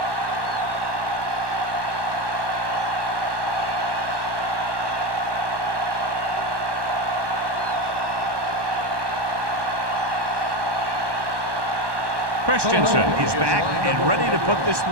Christensen is back and ready to put this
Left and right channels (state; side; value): late; left; 1.2 ms